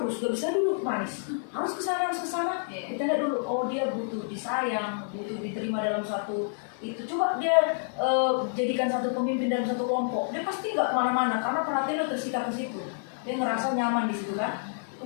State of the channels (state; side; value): silent; right; digital silence